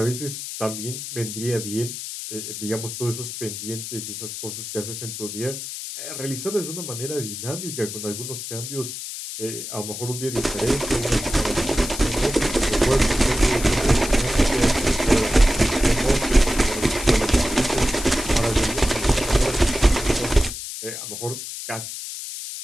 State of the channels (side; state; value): left; noise; hiss, 8 dB below the sound